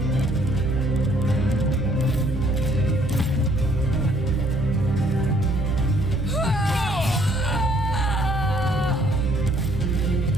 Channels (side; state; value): both; normal; correlation 0.63